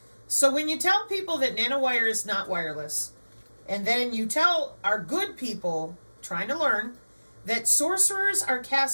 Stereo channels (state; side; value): inverted; both; correlation -1.00